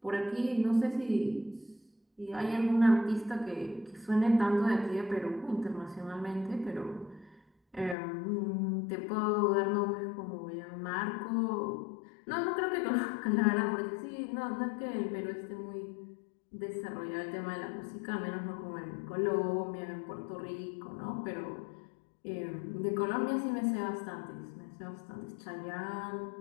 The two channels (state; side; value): drops out; right; at 8.0 s